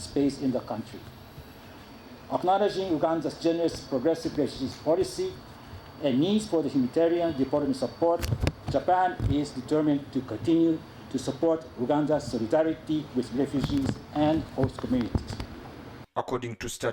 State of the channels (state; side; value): identical; both; correlation 1.00